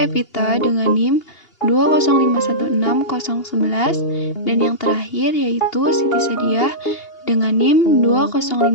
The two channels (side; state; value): right; late; 2.8 ms